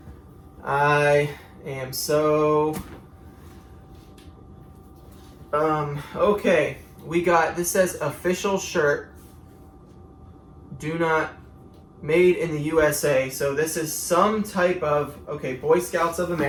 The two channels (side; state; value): both; identical; correlation 1.00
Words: I am so... okay. We got, this says official shirt, do not, made in the USA. So this is some type of, okay, Boy Scouts of